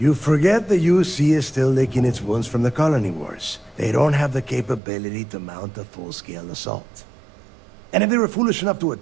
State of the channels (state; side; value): drops out; left; at 4.8 s